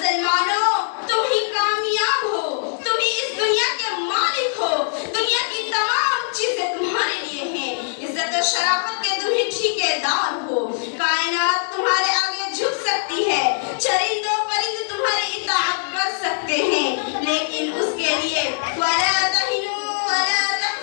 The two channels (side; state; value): right; silent; digital silence